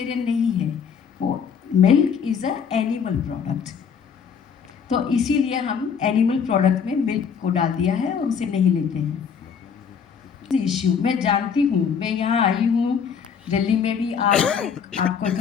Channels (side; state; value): right; quieter; 6.9 dB